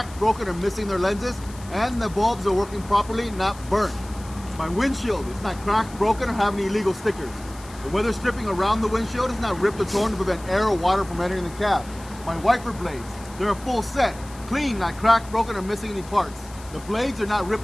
broken, or missing their lenses, and the bulbs are working properly, not burnt. My windshield is not cracked, broken, or have any illegal stickers. The weather stripping around the windshield is not ripped or torn to prevent air or water from entering the cab. My wiper blades, they're a full set, clean, not cracked, broken, or missing any parts. The blades are not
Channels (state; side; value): noise; left; hiss, 20 dB below the sound